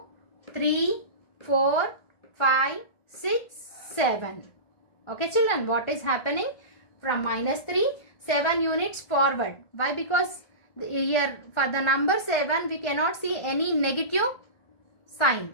3, 4, 5, 6, 7. Okay children, what is happening? From minus 3, 7 units forward. Why? Because here for the number 7 we cannot see any negative sign.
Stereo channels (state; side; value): late; right; 1.3 ms